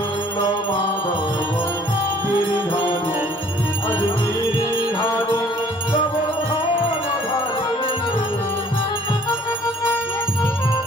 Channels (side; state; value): both; normal; correlation 0.57